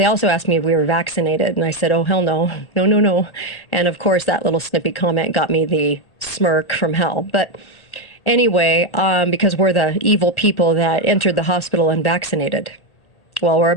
also asked me if we were vaccinated, and I said, oh, hell no. No. And of course, that little snippy comment got me the smirk from hell. But anyway, because we're the evil people that entered the hospital unvaccinated. Well, we're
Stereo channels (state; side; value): late; right; 1.4 ms